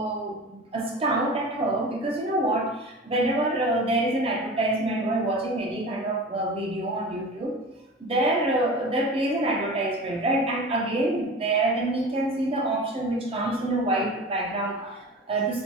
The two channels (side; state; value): both; normal; correlation 0.34